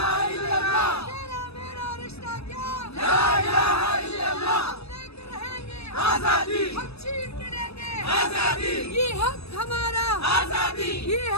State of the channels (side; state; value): right; late; 0.79 ms